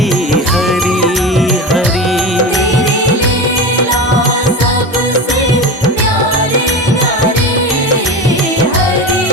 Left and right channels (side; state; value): both; normal; correlation 0.25